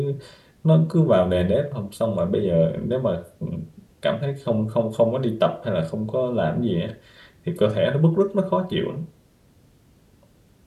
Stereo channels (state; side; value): identical; both; correlation 1.00